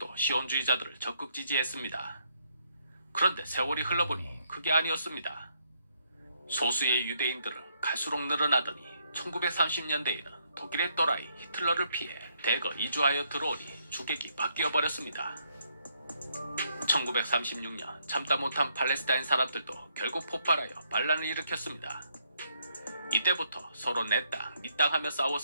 시온주의자들을 적극 지지했습니다. 그런데 세월이 흘러보니 그게 아니었습니다. 소수의 유대인들은 갈수록 늘어나더니 1930년대에는 독일의 또라이 히틀러를 피해 대거 이주하여 들어오니 주객이 바뀌어버렸습니다. 1936년 참다 못한 팔레스타인 사람들도 결국 폭발하여 반란을 일으켰습니다. 이때부터 서로 내 땅, 네 땅 하며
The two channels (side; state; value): both; inverted; correlation -0.73